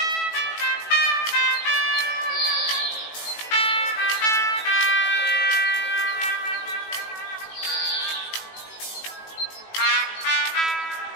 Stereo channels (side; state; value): right; late; 18 ms